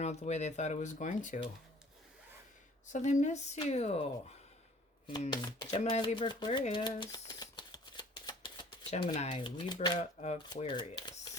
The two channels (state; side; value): normal; both; correlation 0.52